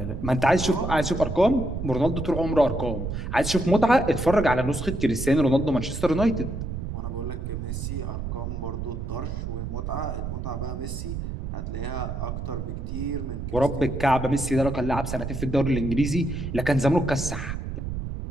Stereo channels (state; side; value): noise; right; rumble, 5 dB below the sound